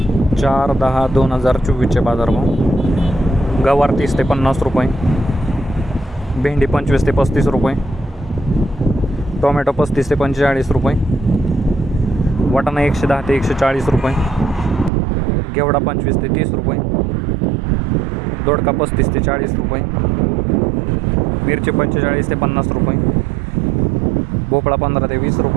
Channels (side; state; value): left; drops out; at 14.9 s